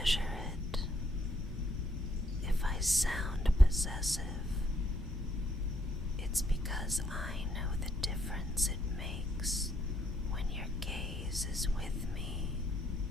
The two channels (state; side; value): normal; both; correlation 0.71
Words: it. If I sound possessive, it's because I know the difference it makes when your gaze is with me.